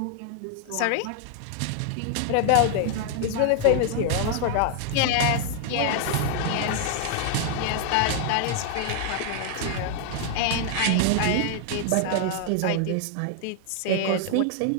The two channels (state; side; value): different; both; correlation 0.00